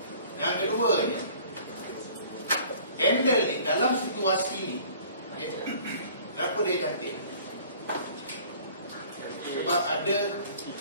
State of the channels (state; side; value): inverted; both; correlation -0.50